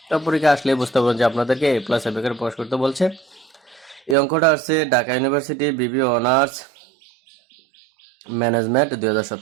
তো পরীক্ষা আসলে বুঝতে পারবেন যে আপনাদেরকে এ প্লাস আইবি আকারে প্রকাশ করতে বলছে। এই অঙ্কটা আসছে ঢাকা ইউনিভার্সিটি বিবি অনার্স ম্যানেজমেন্ট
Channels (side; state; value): left; drops out; at 4.2 s